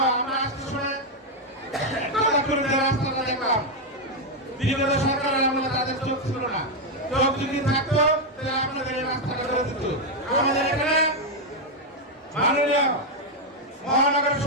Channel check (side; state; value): both; normal; correlation 0.02